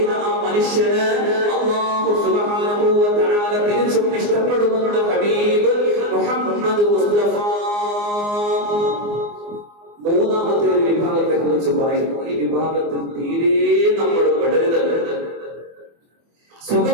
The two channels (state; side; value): late; left; 24 ms